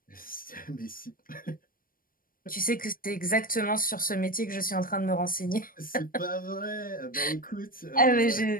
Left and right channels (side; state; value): right; late; 0.41 ms